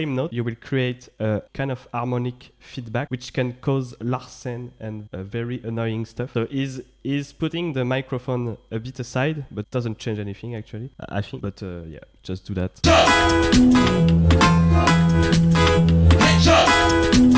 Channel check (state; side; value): identical; both; correlation 1.00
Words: note, you will create a kind of harmonic feedback which can cause larsen and very annoying stuff. So he's putting the microphone a bit aside, but doesn't change anything actually, I think. But yeah, just do that.